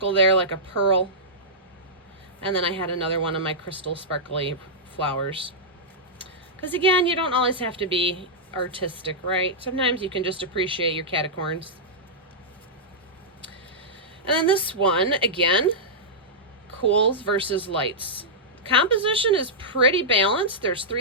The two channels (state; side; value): normal; both; correlation -0.12